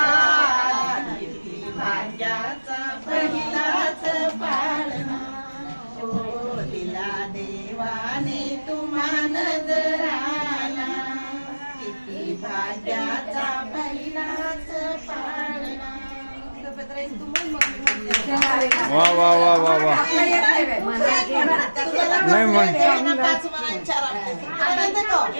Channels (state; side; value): inverted; both; correlation -1.00